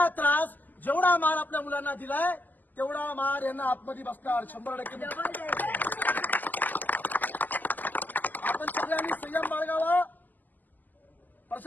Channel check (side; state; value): right; late; 0.085 ms